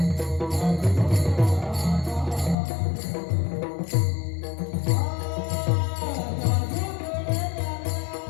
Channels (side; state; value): right; drops out; at 2.6 s